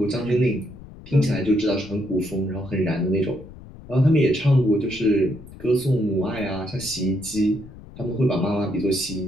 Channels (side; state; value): left; noise; rumble, 17 dB below the sound